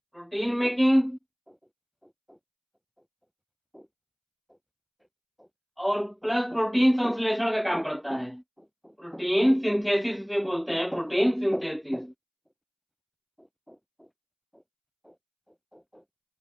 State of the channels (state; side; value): identical; both; correlation 1.00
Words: मेकिंग और प्लस प्रोटीन संश्लेषण का काम करता है। प्रोटीन सिंथेसिस से बोलते हैं, प्रोटीन सिंथेसिस।